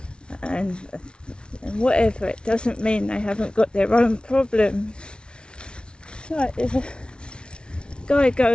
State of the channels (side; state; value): right; late; 0.056 ms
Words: and whatever, it doesn't mean they haven't got their own problems. It's like there's a guy